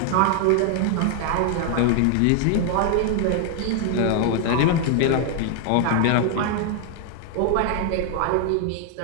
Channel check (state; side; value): different; both; correlation 0.00